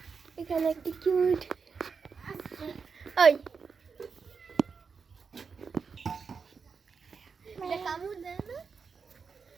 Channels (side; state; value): left; quieter; 5.5 dB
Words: এখানে একটি কিউট ওই এটা কামড় দেয় না?